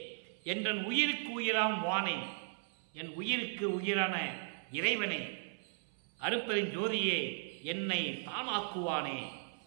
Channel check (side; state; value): left; silent; 53 dB below the other